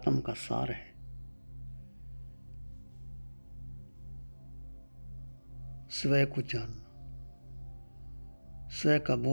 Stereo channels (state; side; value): inverted; both; correlation -1.00